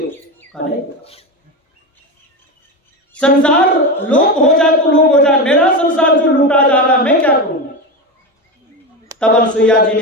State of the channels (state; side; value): normal; both; correlation 0.18